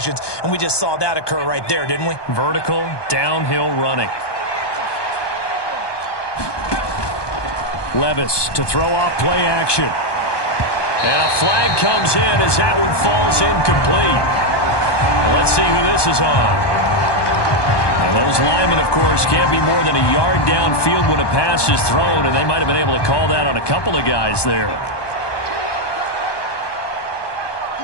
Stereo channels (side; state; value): right; late; 1.2 ms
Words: and we just saw that occur right there, didn't we? Vertical, downhill running. Levis to throw off play action. And a flag comes in as that one falls incomplete. Well, let's see who this is on. And those linemen, of course, can't be more than a yard downfield when a pass is thrown, and they might have been able to call that on a couple of guys there.